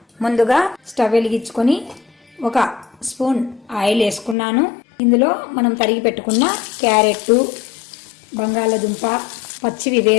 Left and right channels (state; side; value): drops out; right; at 4.4 s